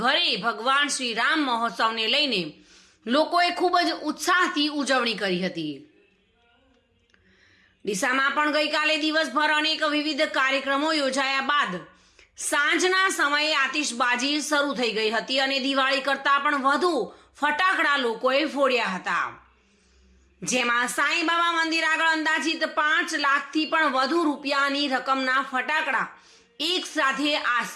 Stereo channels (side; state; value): both; identical; correlation 1.00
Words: ભગવાન શ્રી રામ મહોત્સવને લઈને લોકોએ ખૂબ જ ઉત્સાહથી ઉજવણી કરી હતી. ડીસામાં પણ ગઈકાલે દિવસભર અનેક વિવિધ કાર્યક્રમો યોજાયા બાદ સાંજના સમયે આતિશબાજી શરૂ થઈ ગઈ હતી અને દિવાળી કરતાં પણ વધુ ફટાકડા લોકોએ ફોડ્યા હતા. જેમાં સાંઈબાબા મંદિર આગળ અંદાજિત 5 લાખથી પણ વધુ રૂપિયાની રકમના ફટાકડા એક સાથે